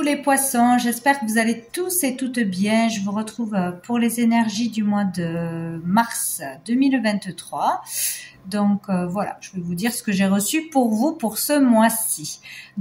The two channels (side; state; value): both; identical; correlation 1.00